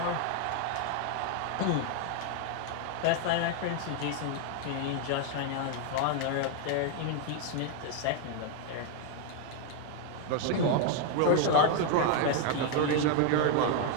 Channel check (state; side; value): different; both; correlation 0.00